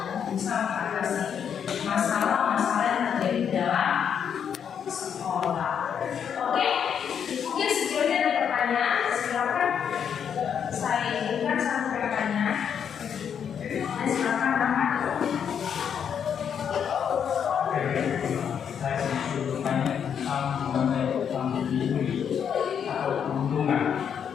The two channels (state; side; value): quieter; right; 7.9 dB